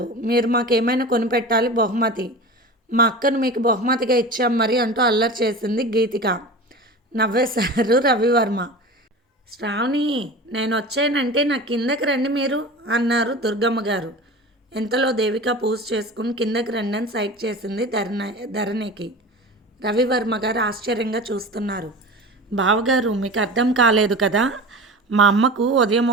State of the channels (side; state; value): both; normal; correlation 0.33